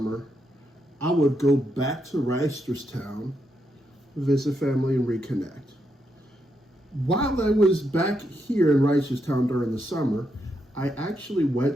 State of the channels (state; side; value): normal; both; correlation 0.81